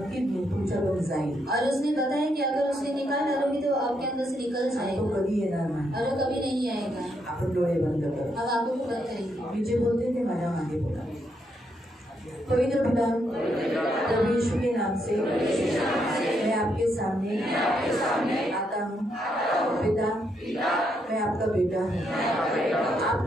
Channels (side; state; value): both; normal; correlation 0.77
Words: तुमच्याकडून जाईल. और उसने बताया कि अगर उसने निकाल डालोगी तो आपके अंदर से निकल आणि तो जाएगा कधी येणार नाही. और वो कभी नहीं आएगा. आपण डोळे बंद करू. हम आंखों को बंद करेंगे. मी जे बोलते ते माझ्या मागे बोला. पवित्र पिता, प्रभु यीशु के नाम से मैं आपके सामने आता हूँ. पिता, मैं आपका बेटा हूँ.